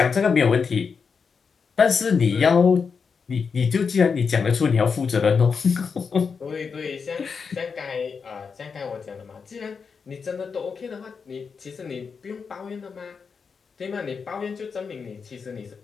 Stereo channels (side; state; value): right; quieter; 5.6 dB